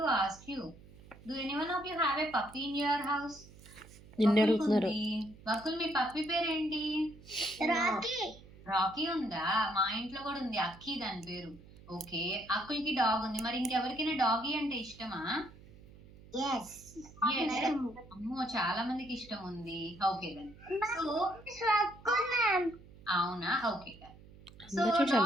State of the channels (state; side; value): noise; right; hum, 21 dB below the sound